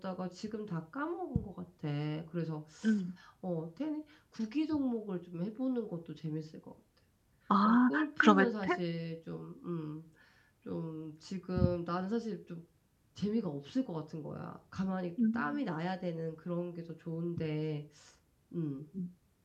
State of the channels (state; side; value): identical; both; correlation 1.00